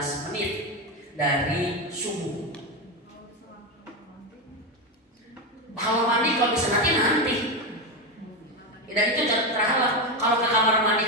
menit dari subuh. Kalau mandi kalau bisa nanti. Dan itu terhalang. Kalau ke kamar mandi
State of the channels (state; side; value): normal; both; correlation 0.12